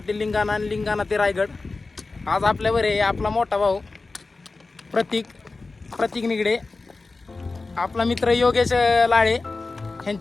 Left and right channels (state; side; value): quieter; right; 3.7 dB